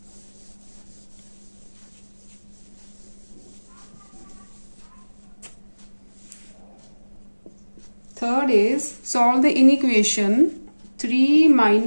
Third is solve the inequation 3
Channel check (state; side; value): inverted; both; correlation -1.00